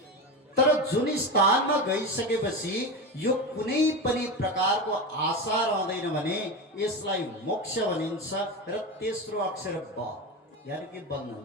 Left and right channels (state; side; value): normal; both; correlation 0.21